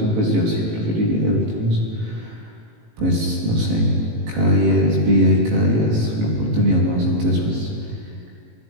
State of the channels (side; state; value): left; late; 18 ms